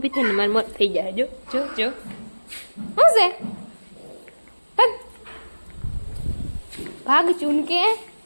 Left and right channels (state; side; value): inverted; both; correlation -1.00